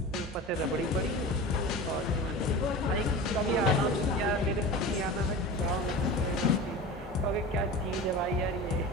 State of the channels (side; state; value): both; normal; correlation 0.32